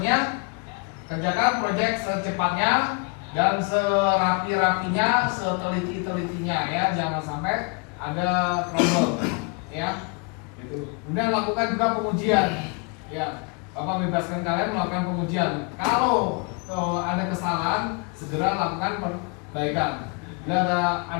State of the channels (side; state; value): right; quieter; 33.4 dB